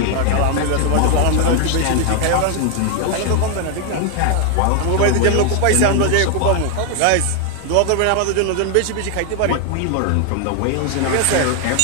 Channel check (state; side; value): different; both; correlation 0.00